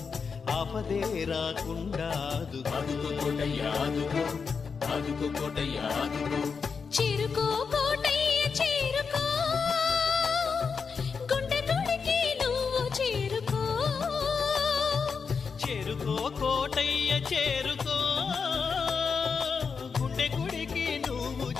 ఆపదే రాకుండా ఆదుకో కోటయ్య ఆదుకో, ఆదుకో కోటయ్య ఆదుకో. చేరుకో కోటయ్య చేరుకో, గుండె గుడికి నువ్వు చేరుకో. చేరుకో కోటయ్య చేరుకో, గుండె గుడికి నువ్వు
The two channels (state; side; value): quieter; right; 5.6 dB